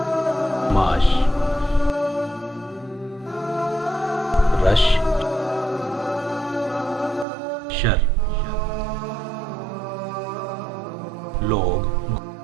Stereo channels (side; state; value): left; drops out; at 7.2 s